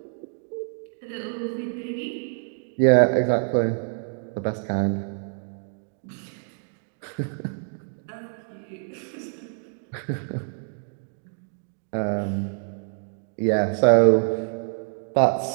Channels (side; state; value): left; silent; 57 dB below the other